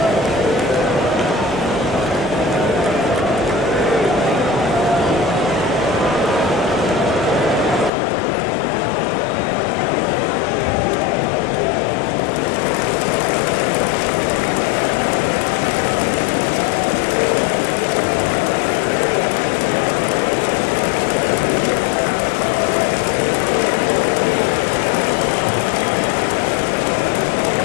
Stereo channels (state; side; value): drops out; right; at 7.9 s